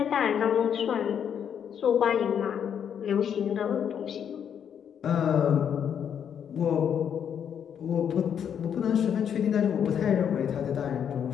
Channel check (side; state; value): right; quieter; 8.3 dB